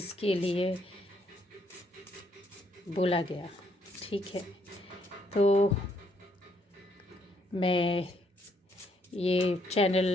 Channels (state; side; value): normal; both; correlation 0.71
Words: लिए बोला गया, ठीक है। तो मैं ये चैनल